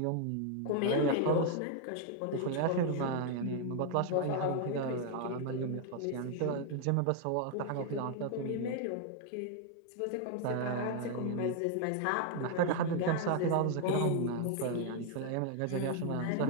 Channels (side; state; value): both; different; correlation 0.00